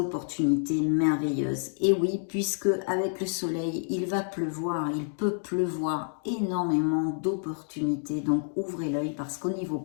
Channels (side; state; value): right; silent; digital silence